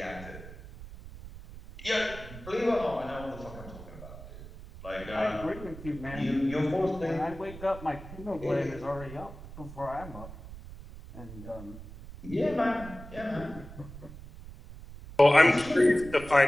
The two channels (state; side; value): noise; right; rumble, 14 dB below the sound